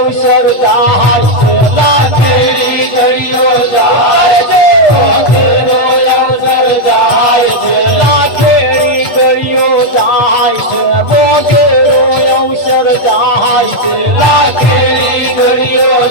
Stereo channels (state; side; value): late; right; 8.6 ms